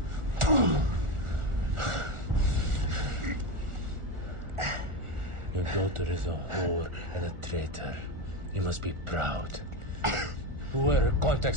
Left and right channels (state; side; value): late; left; 1.4 ms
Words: Your daughter is a whore and a traitor. You must be proud. Who were her